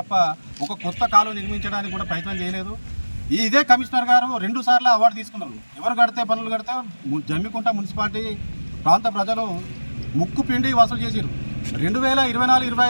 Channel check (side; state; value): both; inverted; correlation -1.00